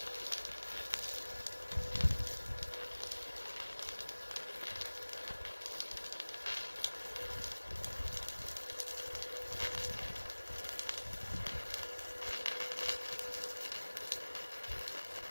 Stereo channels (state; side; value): inverted; both; correlation -1.00